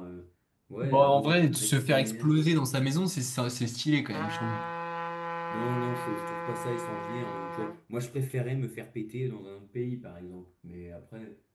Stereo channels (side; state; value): both; identical; correlation 1.00